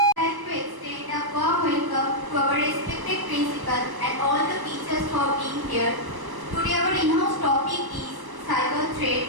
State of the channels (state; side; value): late; left; 1.1 ms